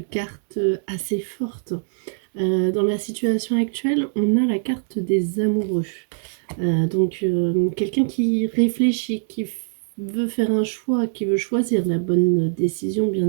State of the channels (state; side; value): silent; left; digital silence